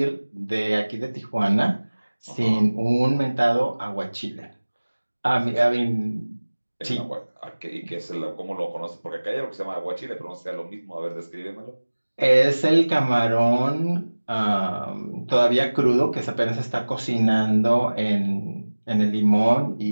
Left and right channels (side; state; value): both; inverted; correlation -1.00